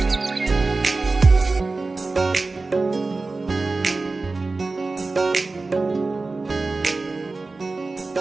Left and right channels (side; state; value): left; quieter; 3.6 dB